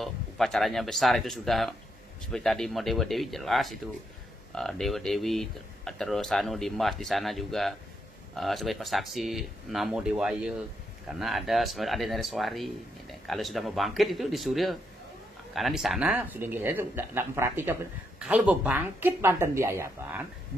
upacaranya besar itu sudah seperti tadi mau Dewa Dewi jelas itu Dewa Dewi terus dimas di sana juga sebagai pesaksi Namo Dewaya karena ada Nareswari. Kalau sudah mau bangkit itu di Surya karena di sana sudah itu tidak memperhatikan. Kalau mau bangkit Banten di Ayapan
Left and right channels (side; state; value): both; normal; correlation 0.79